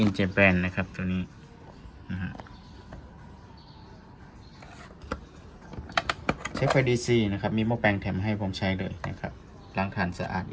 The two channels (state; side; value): identical; both; correlation 1.00